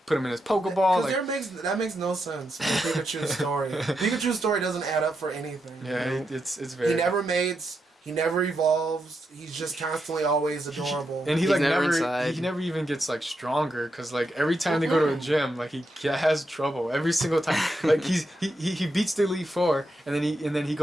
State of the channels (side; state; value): both; normal; correlation 0.84